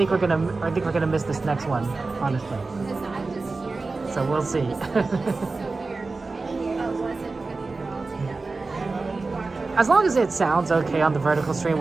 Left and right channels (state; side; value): quieter; left; 3.8 dB